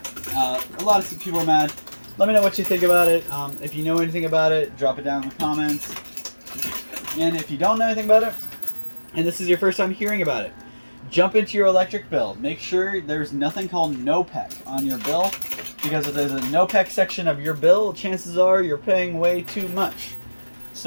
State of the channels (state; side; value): inverted; both; correlation -1.00